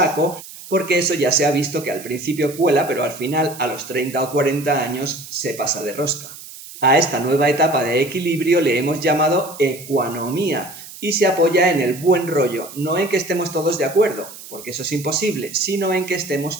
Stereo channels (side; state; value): right; noise; hiss, 15 dB below the sound